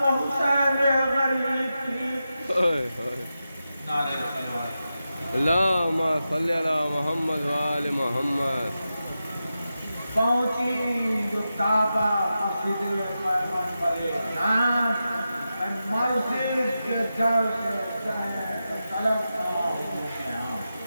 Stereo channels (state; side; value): inverted; both; correlation -0.91